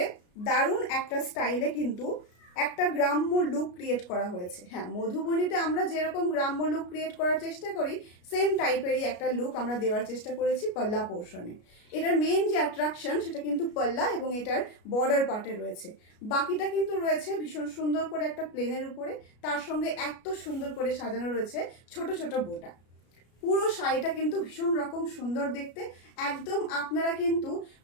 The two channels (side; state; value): right; late; 33 ms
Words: দারুণ একটা স্টাইলে কিন্তু একটা গ্রাম্য লুক ক্রিয়েট করা হয়েছে। হ্যাঁ, মধুবনীতে আমরা যেরকম গ্রাম্য লুক ক্রিয়েট করার চেষ্টা করি সেম টাইপেরই একটা লুক আমরা দেওয়ার চেষ্টা করেছি পাল্লা পোর্শনে। এটার মেন যে অ্যাট্রাকশন সেটা কিন্তু পাল্লা এবং এটার বর্ডার পার্টে রয়েছে। বাকিটা কিন্তু রয়েছে ভীষণ সুন্দর করে একটা প্লেনের উপরে, তার সঙ্গে এত সুন্দর করে সাজানো রয়েছে ছোট ছোট বোটা। পুরো শাড়িটা কিন্তু ভীষণ রকম সুন্দর দেখতে। একদম আপনারা কিন্তু